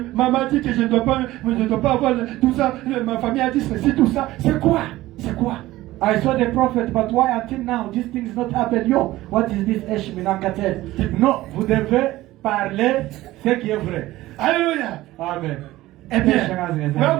dit que je ne dois pas avoir tout ça. Ma famille a dit ceci, tout ça. C'est quoi? C'est quoi? I saw the prophet, but why until now this thing is not happened? Yo, what is this Eshminankatet? Non, vous devez parler ce qui est vrai. Alléluia. Amen. Eh bien, we are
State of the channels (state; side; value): quieter; left; 16.8 dB